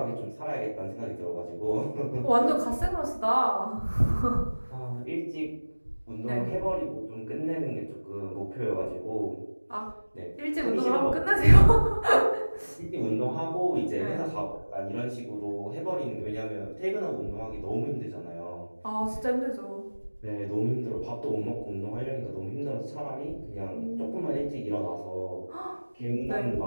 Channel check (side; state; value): both; inverted; correlation -1.00